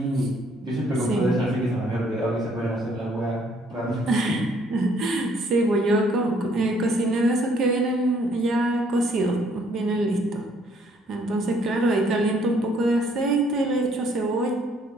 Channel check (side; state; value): both; normal; correlation 0.64